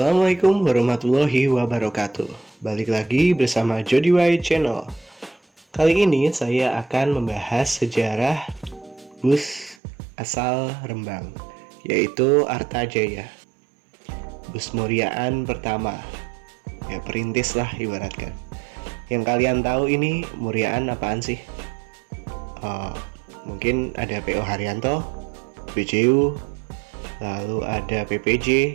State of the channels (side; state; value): left; drops out; at 9.8 s